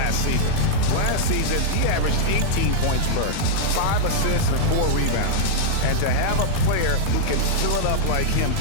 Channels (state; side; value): different; both; correlation -0.02